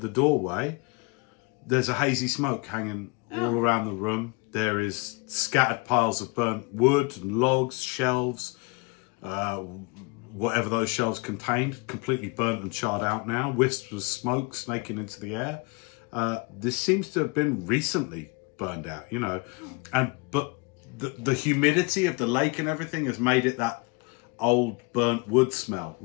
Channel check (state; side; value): quieter; right; 29.6 dB